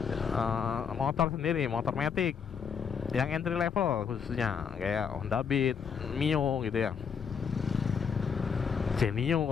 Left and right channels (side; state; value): right; quieter; 6.7 dB